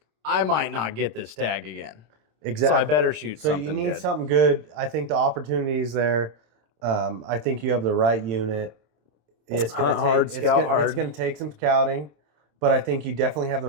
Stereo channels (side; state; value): left; late; 26 ms